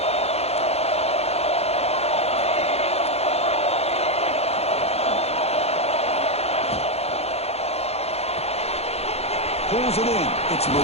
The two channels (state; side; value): late; right; 0.30 ms